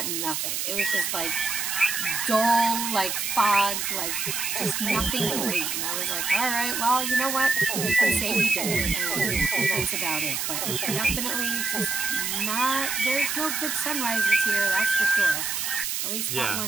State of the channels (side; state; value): right; noise; hiss, 1 dB below the sound